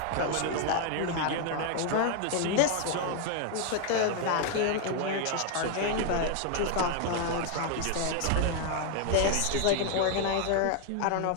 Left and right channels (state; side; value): different; both; correlation 0.00